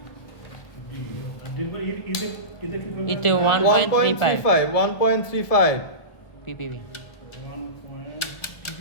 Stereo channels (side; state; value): right; late; 1.7 ms